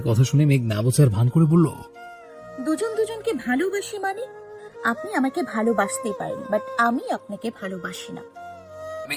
কথা শুনে মেঘ না বোঝার ভান করে বলল, দুজন দুজনকে ভালোবাসি মানে? আপনি আমাকে ভালোবাসতেই পারেন, বাট আমি আপনাকে ভালোবাসি না।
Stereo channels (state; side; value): identical; both; correlation 1.00